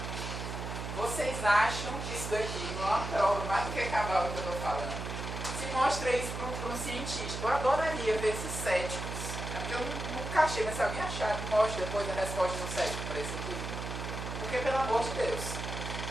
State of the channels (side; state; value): right; noise; hum, 6 dB below the sound